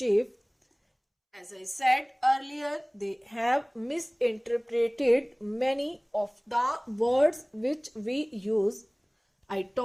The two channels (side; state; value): both; identical; correlation 1.00